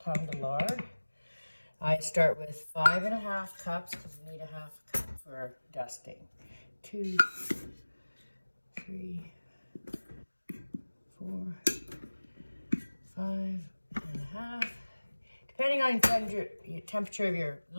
of lard. I start with 5.5 cups because you need a half cup for dusting. 2, 3, 4, 5.5. Depending on your temperature of your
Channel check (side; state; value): both; inverted; correlation -1.00